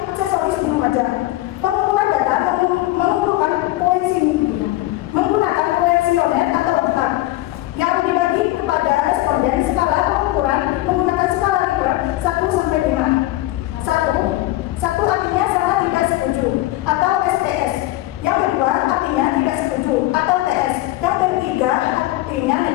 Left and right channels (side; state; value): right; quieter; 17.2 dB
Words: aksesoris di Lumajang. Pengumpulan data menggunakan kuesioner atau angka yang dibagi kepada responden. Skala pengukuran menggunakan skala Likert 1 sampai 5. 1 artinya sangat tidak setuju atau STS. Yang kedua artinya tidak setuju atau TS. Yang ketiga artinya